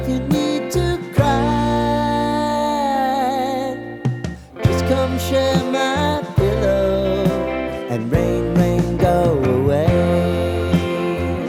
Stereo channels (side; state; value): both; identical; correlation 1.00